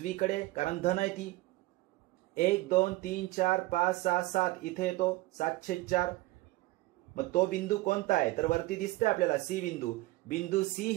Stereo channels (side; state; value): left; quieter; 19.4 dB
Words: कारण धन आहे ती. 1 2 3 4 5 6 7 इथे येतो 7/4. मग तो बिंदू कोणता आहे? तर वरती दिसतंय आपल्याला सी बिंदू. बिंदू सी